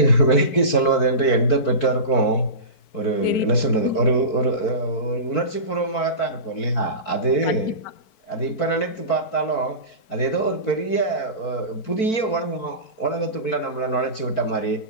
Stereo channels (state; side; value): late; right; 4.5 ms